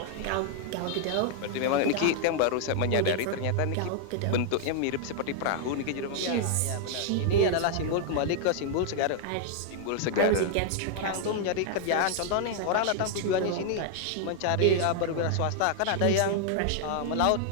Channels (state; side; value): different; both; correlation 0.00